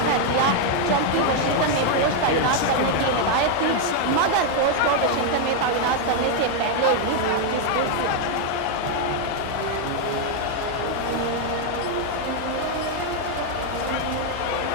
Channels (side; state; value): both; different; correlation 0.00